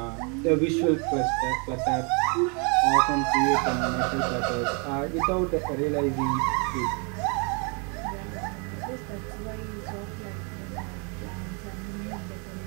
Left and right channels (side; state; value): left; quieter; 34.9 dB